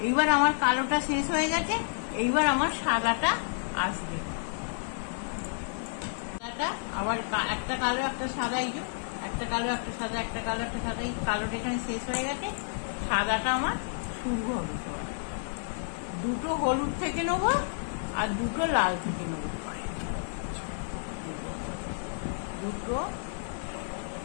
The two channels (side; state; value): right; silent; 58 dB below the other